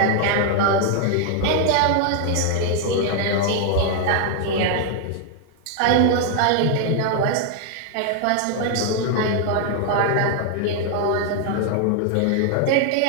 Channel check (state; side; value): different; both; correlation 0.00